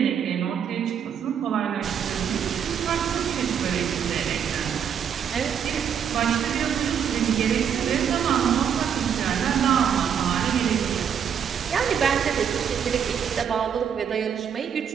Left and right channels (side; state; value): left; quieter; 8.0 dB